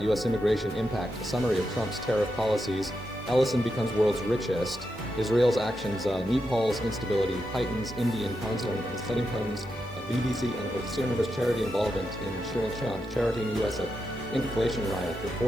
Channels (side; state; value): right; noise; hiss, 29 dB below the sound